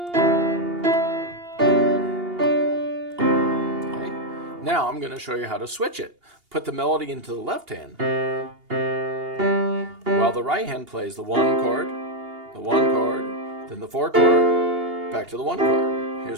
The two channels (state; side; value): late; left; 2.8 ms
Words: Twinkle, Now I'm going to show you how to switch it. Put the melody into the left hand, while the right hand plays the one chord, then the four chord, back to the one chord.